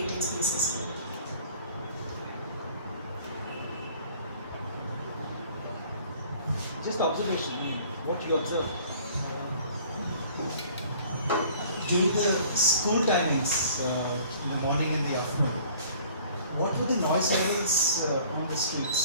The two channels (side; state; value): both; inverted; correlation -0.52